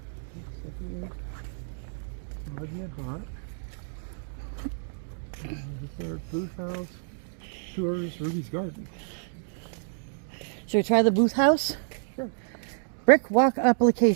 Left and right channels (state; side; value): silent; left; digital silence